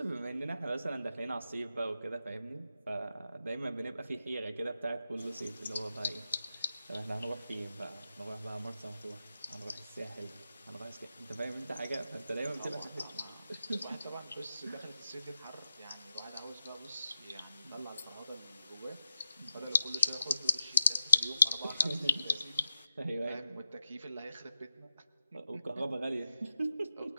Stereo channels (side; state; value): both; inverted; correlation -0.88